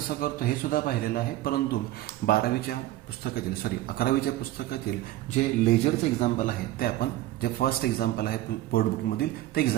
करतो हे सुद्धा पाहिलेलं आहे. परंतु 11वीच्या पुस्तकातील जे लेजरचं एक्झाम्पल आहे ते आपण, जे फर्स्ट एक्झाम्पल आहे बोर्ड बुकमधील, ते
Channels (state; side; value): quieter; left; 15.3 dB